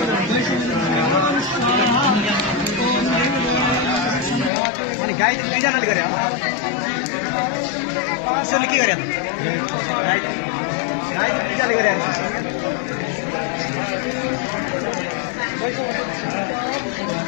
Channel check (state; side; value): drops out; right; at 4.5 s